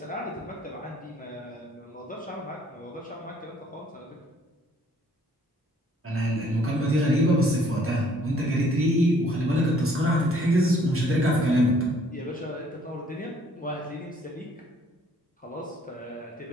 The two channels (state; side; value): normal; both; correlation 0.60